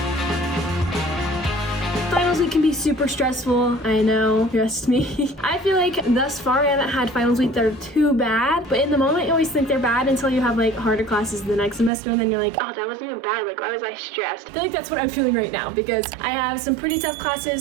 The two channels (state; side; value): drops out; left; at 11.9 s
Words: Finals week can be super stressful, I know, trust me. I feel like thus far I haven't had finals week that are too bad, but in the moment you always think they're bad until you have like harder classes the next semester, and then you're like, oh, that wasn't even bad, like why was I stressed? I feel like that's what I'm feeling right now because I have some pretty tough